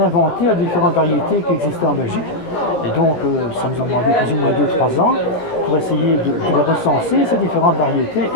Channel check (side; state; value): right; late; 17 ms